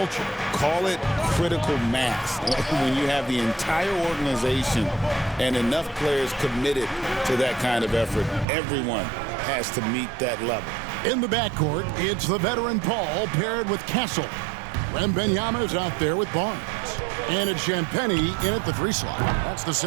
Call it critical mass. When you have the entire organization and enough players committed to that kind of effort, everyone has to meet that level. In the backcourt, it's the veteran Paul paired with Castle. Wembanyama's out there with Barnes. And it's Champagnie in at the 3 slot. That's the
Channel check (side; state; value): left; drops out; at 8.5 s